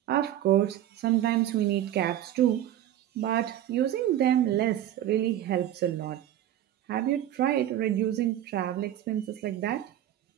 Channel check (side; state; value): left; quieter; 12.1 dB